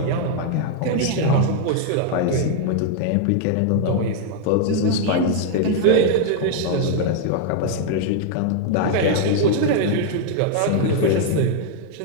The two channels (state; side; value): different; both; correlation 0.00